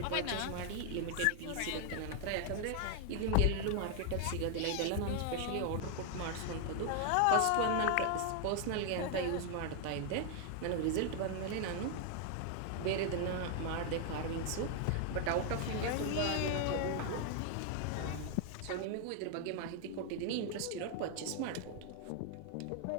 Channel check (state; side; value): different; both; correlation 0.00